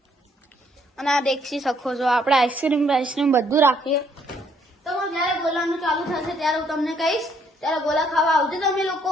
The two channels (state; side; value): normal; both; correlation 0.68